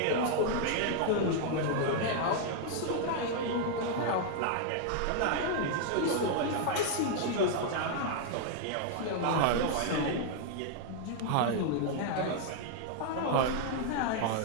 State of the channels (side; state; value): both; different; correlation 0.00